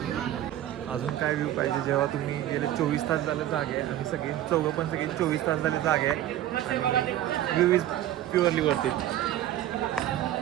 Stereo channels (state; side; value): quieter; left; 12.9 dB